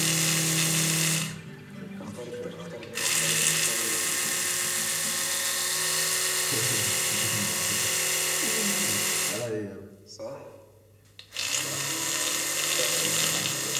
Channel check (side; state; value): both; identical; correlation 1.00